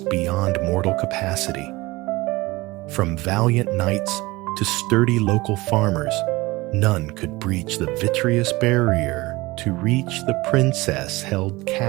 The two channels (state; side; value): quieter; left; 21.3 dB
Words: beyond mortal capacity. From valiant knights to sturdy local farmers, none could breach the vitreous barrier to reach the princess held